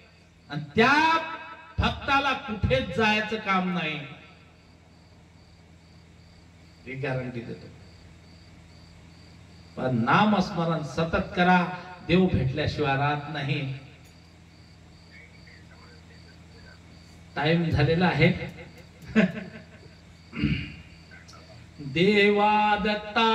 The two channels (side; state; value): both; identical; correlation 1.00